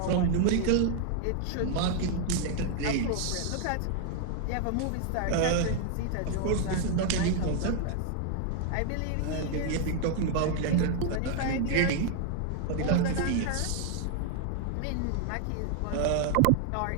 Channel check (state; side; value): different; both; correlation 0.00